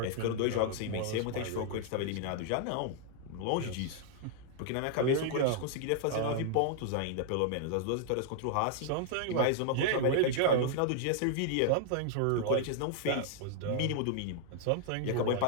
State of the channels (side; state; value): both; different; correlation 0.00